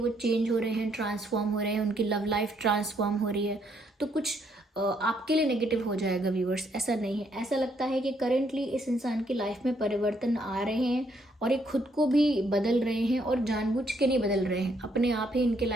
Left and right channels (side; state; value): both; normal; correlation 0.71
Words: चेंज हो रहे हैं, ट्रांसफॉर्म हो रहे हैं, उनकी लव लाइफ ट्रांसफॉर्म हो रही है तो कुछ आपके लिए नेगेटिव हो जाएगा व्यूअर्स, ऐसा नहीं है। ऐसा लगता है कि करेंटली इस इंसान की लाइफ में परिवर्तन आ रहे हैं, और ये खुद को भी बदल रहे हैं, और जानबूझ के नहीं बदल रहे हैं, अपने आप ही इनके